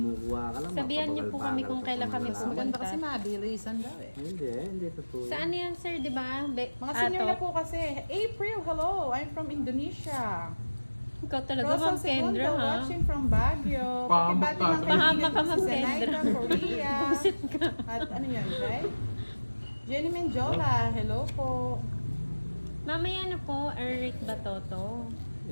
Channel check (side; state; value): both; inverted; correlation -1.00